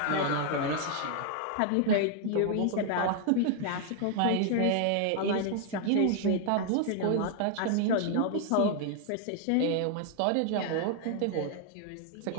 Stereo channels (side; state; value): both; different; correlation 0.00